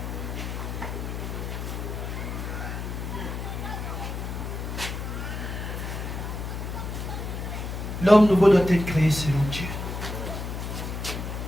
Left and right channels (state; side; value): noise; left; hum, 5 dB below the sound